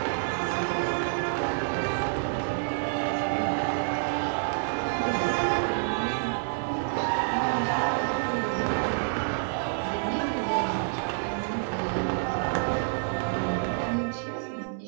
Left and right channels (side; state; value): left; silent; 59 dB below the other